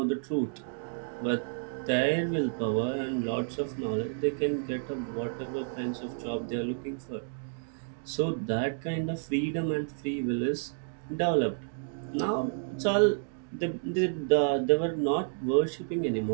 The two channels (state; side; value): silent; left; digital silence